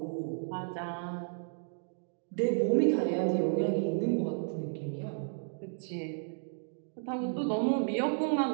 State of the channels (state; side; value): silent; left; digital silence